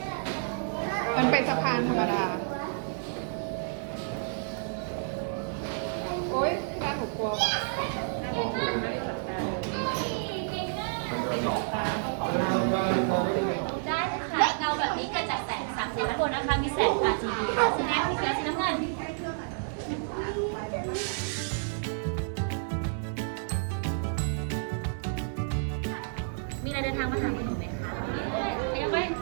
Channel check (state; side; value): silent; left; digital silence